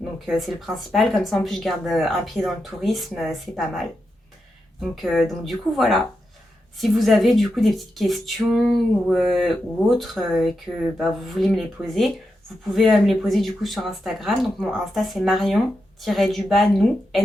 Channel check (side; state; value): both; normal; correlation 0.87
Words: Donc c'est le principal. Comme ça, en plus, je garde un pied dans le tourisme. C'est pas mal. Donc du coup, voilà. Si vous avez du coup des petites questions ou autres et que vous voulez me les poser, vous pouvez me les poser du coup sur Instagram. Donc mon Insta, c'est Marion-nous,